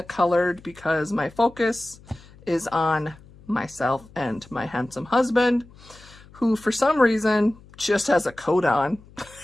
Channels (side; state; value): left; noise; hum, 23 dB below the sound